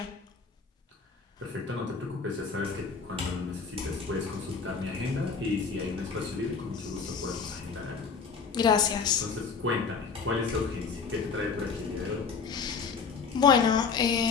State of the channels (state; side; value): quieter; right; 5.4 dB